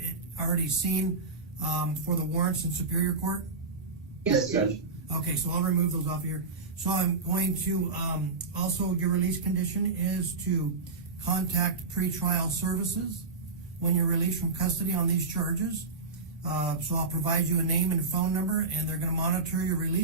already seen for the warrants in Superior Court? Yes, Judge. Okay, so I'll remove those off here. So I'm going to, also your release condition is to contact pretrial services when you're released from custody on these charges. So I'll provide you a name and phone number, and they're going to monitor your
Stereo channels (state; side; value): quieter; left; 4.0 dB